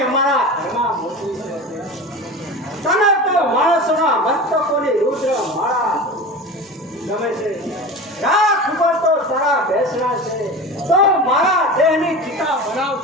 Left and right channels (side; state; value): both; normal; correlation 0.31